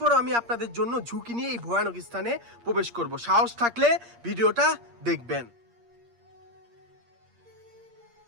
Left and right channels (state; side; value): late; left; 8.5 ms